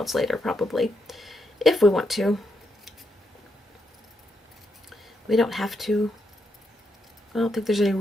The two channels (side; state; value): both; normal; correlation 0.81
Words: later, probably, if we want to. We don't have to. I don't think there's any